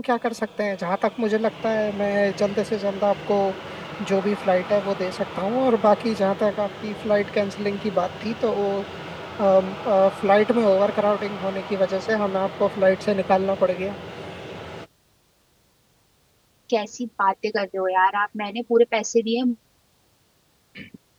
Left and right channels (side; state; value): both; identical; correlation 1.00